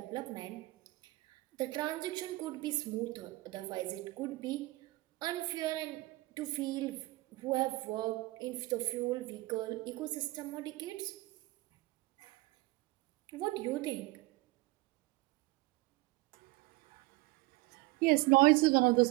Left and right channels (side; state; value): left; quieter; 21.3 dB